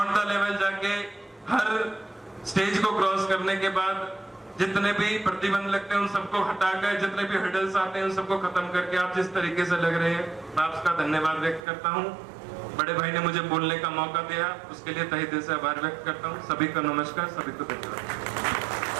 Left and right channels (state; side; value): drops out; left; at 11.6 s